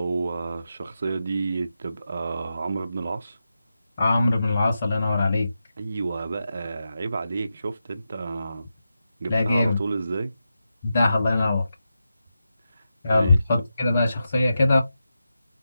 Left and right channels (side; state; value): both; inverted; correlation -0.88